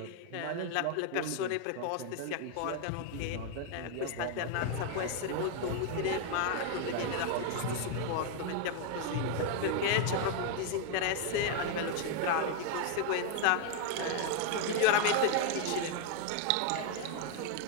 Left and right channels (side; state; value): both; different; correlation 0.00